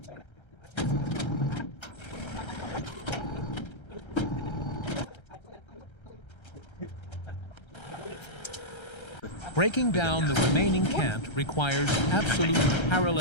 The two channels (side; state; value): right; late; 1.3 ms